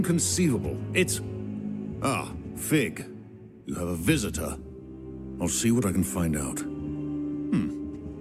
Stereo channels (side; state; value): both; identical; correlation 1.00